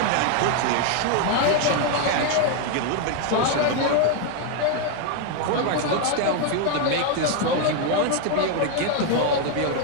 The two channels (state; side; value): different; both; correlation 0.01